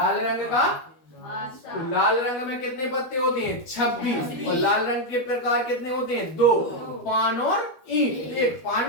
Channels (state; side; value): late; right; 12 ms